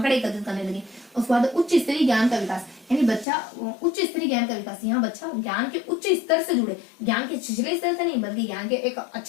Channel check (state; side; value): drops out; right; at 3.2 s